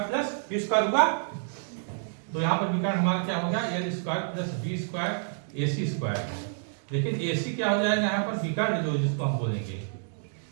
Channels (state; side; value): silent; left; digital silence